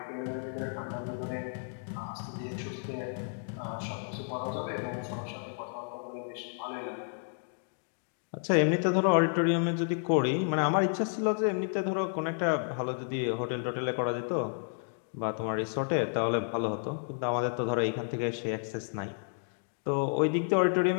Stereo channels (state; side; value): silent; right; digital silence